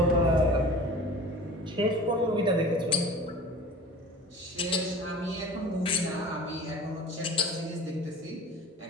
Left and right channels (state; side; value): normal; both; correlation 0.41